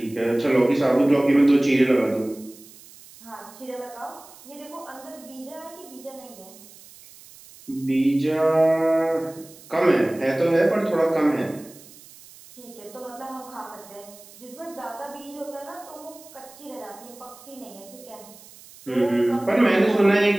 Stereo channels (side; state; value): right; noise; hiss, 21 dB below the sound